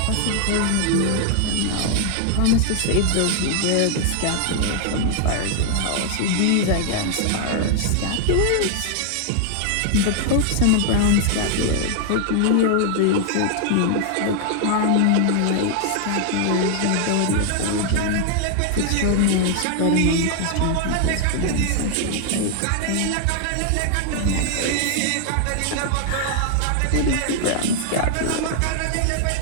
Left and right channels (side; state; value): both; different; correlation 0.00